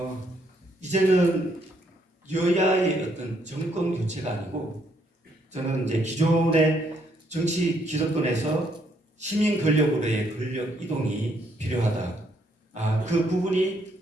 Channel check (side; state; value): both; normal; correlation 0.71